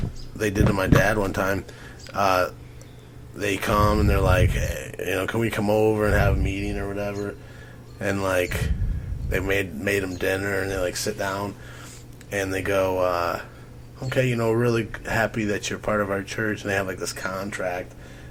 they did to my dad one time. They come and they're like, hey, can we come over and have a meeting or whatever? And like, they made him dinner and they like sit down and they go, okay, really happy that you're part of our church. And they have like this contract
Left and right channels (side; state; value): both; identical; correlation 1.00